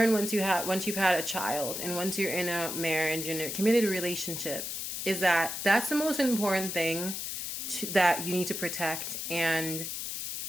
once you've had a child and once you're in a marriage and a committed relationship is that that's the most important thing that you need to protect. And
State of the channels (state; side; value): noise; left; hiss, 4 dB below the sound